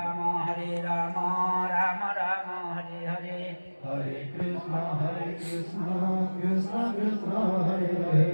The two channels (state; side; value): inverted; both; correlation -1.00